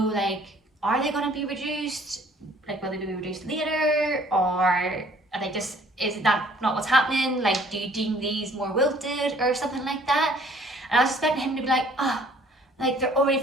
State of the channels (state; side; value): normal; both; correlation 0.57